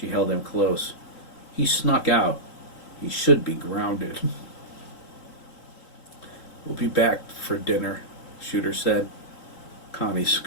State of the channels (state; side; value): late; right; 3.8 ms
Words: held him close. He snuck out. He should be grounded. We'll be back for dinner, Shooter said. Connie